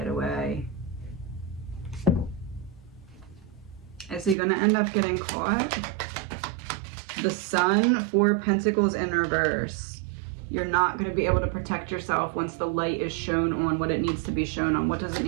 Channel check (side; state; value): left; drops out; at 4.4 s